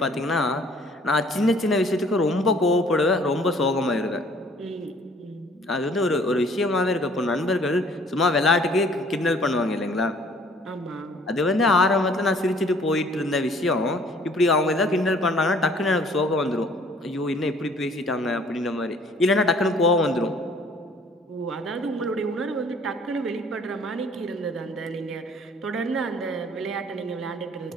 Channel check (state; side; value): normal; both; correlation 0.56